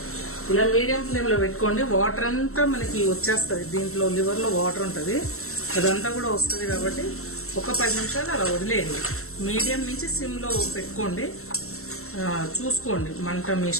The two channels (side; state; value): right; late; 0.63 ms